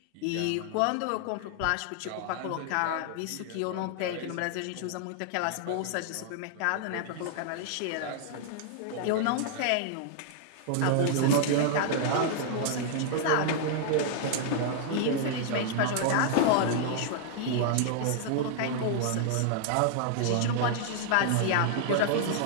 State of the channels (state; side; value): different; both; correlation 0.00